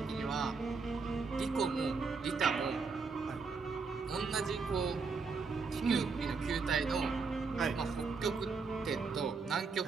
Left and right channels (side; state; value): left; quieter; 4.7 dB